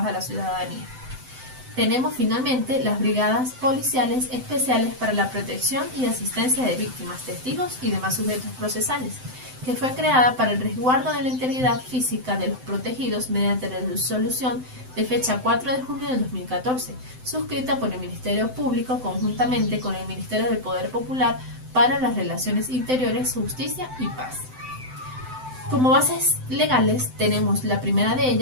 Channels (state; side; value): late; left; 7.8 ms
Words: a la ciudadanía. Tenemos finalmente las brigadas policiales especiales para la protección y asistencia de víctimas, testigos y demás sujetos procesales, que fue creada para el resguardo de la integridad física de los protegidos mediante la resolución de fecha 4 de junio de 2014, suscrita por el Ministerio Público conjuntamente con el Ministerio del Poder Popular para las Relaciones Interiores, Justicia y Paz. Como bases legales tenemos la primera de